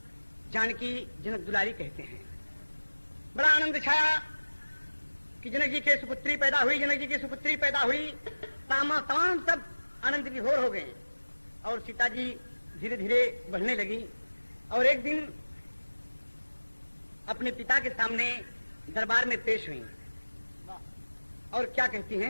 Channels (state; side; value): inverted; both; correlation -1.00